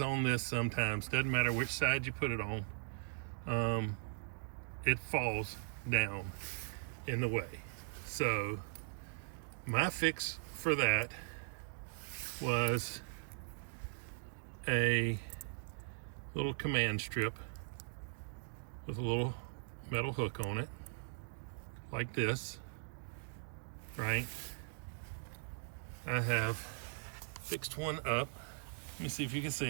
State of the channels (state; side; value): silent; left; digital silence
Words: this sometimes. Doesn't matter which side you put it on. It falls down in the way. So my fix for that was a little command strip with a little metal hook on it, like this, right? I have fixed one up. Let me see if you can